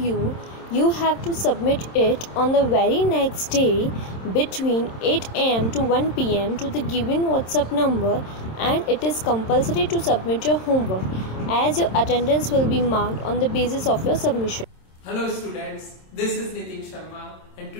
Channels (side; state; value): right; late; 27 ms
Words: you have to submit it on the very next day between 8 am to 1 pm to the given WhatsApp number, and it is compulsory to submit your homework as your attendance will be marked on the basis of your submission. Hello students, this is Nitin Sharma and